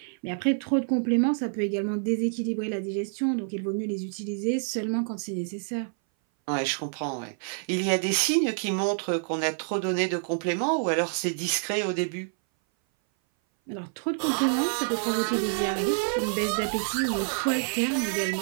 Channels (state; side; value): silent; left; 58 dB below the other